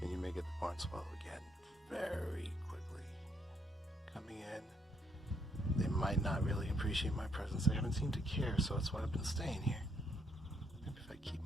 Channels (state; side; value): normal; both; correlation 0.73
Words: And you may get the barn swallow again very quickly coming in. They might not really appreciate my presence. They haven't seemed to care, so that's why I've been staying here. Maybe if I keep